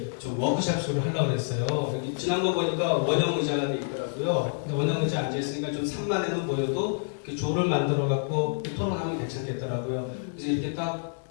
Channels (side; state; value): right; silent; 59 dB below the other